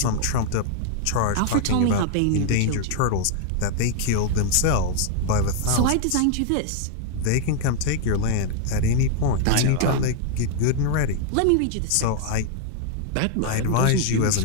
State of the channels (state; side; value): different; both; correlation 0.00